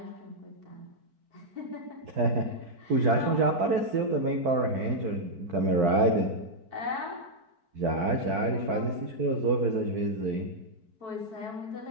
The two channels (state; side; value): late; left; 4.5 ms